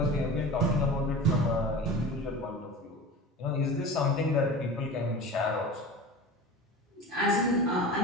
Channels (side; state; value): both; normal; correlation 0.34